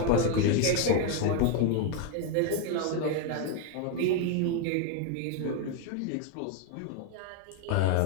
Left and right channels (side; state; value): both; different; correlation 0.01